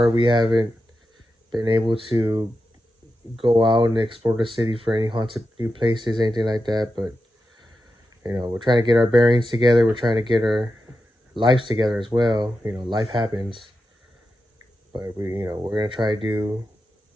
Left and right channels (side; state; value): both; normal; correlation 0.90